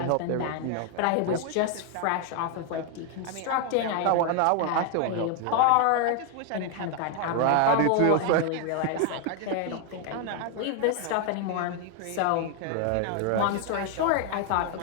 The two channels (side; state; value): both; different; correlation 0.01